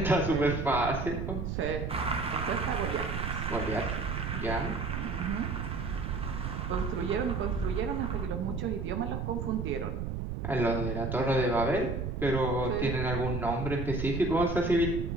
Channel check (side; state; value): right; noise; rumble, 3 dB below the sound